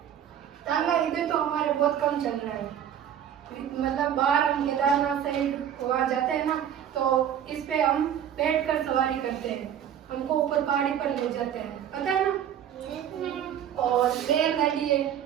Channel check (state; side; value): quieter; left; 9.6 dB